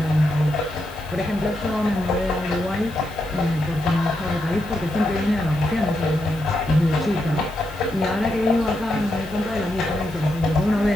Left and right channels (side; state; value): left; noise; hiss, 23 dB below the sound